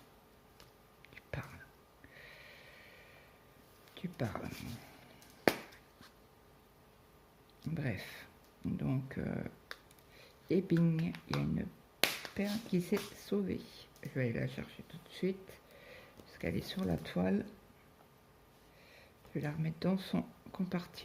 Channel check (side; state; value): both; identical; correlation 1.00